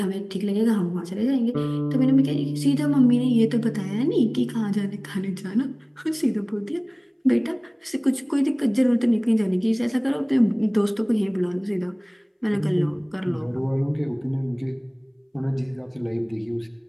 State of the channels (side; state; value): both; identical; correlation 1.00